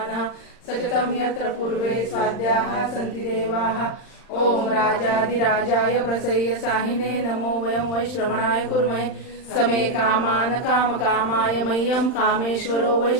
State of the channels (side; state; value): right; late; 39 ms